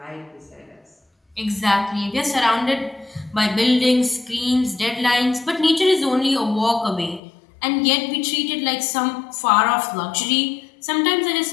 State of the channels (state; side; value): drops out; right; at 7.2 s